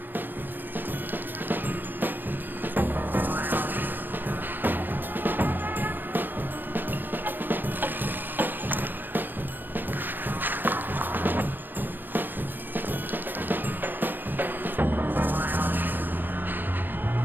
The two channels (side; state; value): left; late; 0.091 ms